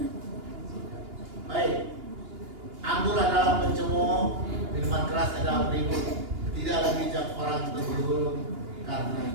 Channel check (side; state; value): left; late; 2.8 ms